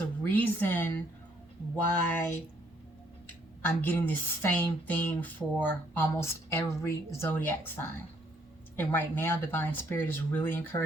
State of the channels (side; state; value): both; normal; correlation 0.67